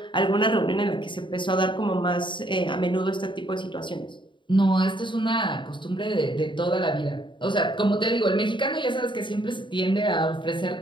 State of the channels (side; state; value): right; late; 0.23 ms